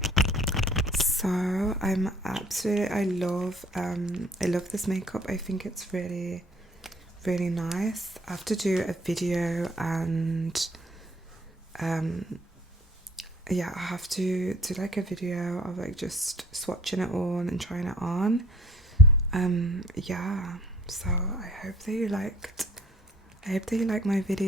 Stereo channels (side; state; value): both; normal; correlation 0.55